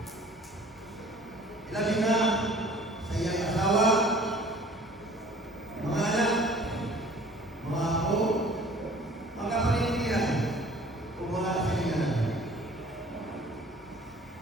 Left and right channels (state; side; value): normal; both; correlation 0.50